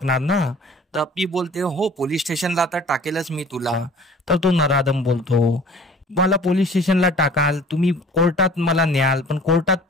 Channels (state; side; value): normal; both; correlation 0.48